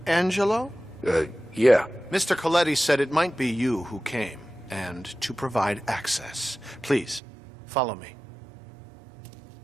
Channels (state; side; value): drops out; left; at 7.2 s